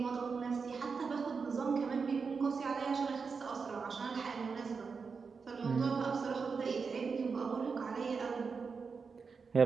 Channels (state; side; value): quieter; left; 5.2 dB